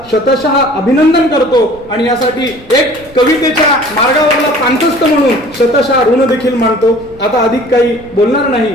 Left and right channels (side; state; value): right; noise; rumble, 23 dB below the sound